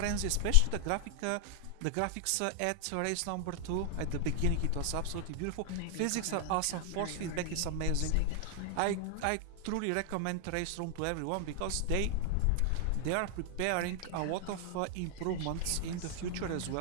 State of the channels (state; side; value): different; both; correlation 0.00